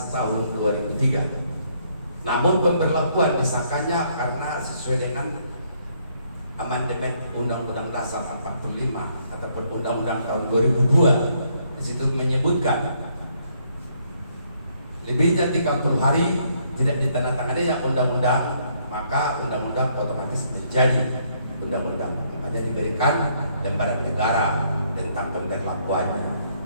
Tahun 2003. Namun pemberlakuan disahkannya karena sesuai dengan amandemen Undang-Undang Dasar 45 ataupun Undang-Undang tahun 2002. Di situ menyebutkan lebihnya 30 hari tidak ditandatangani yang undang-undang, maka undang-undang otomatis menjadi undang-undang. Makanya diberikan lembaran negara tentang pemberlakuannya.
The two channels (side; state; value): both; inverted; correlation -0.70